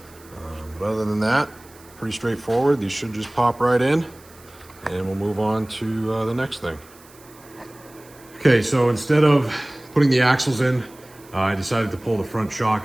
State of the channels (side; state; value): right; noise; hiss, 25 dB below the sound